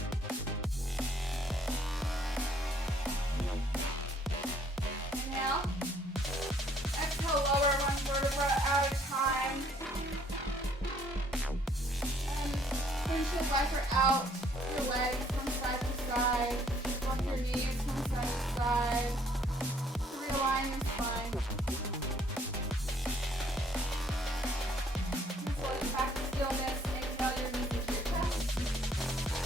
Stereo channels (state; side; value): normal; both; correlation 0.63